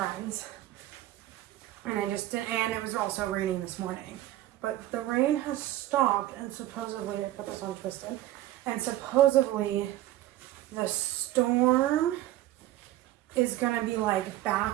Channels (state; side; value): quieter; left; 14.7 dB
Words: And and it was also raining this morning. But the rain has stopped, and supposedly, I put this on twisted, and supposedly the storm is gonna be like